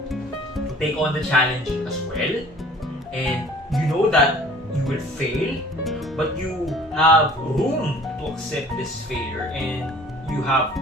take on the challenge as well, and you know that you will fail, but you have room to accept this failure, and you have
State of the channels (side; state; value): both; normal; correlation 0.50